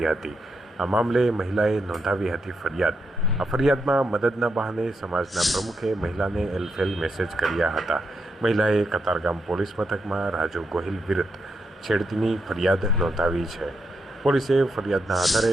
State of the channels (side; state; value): both; normal; correlation 0.82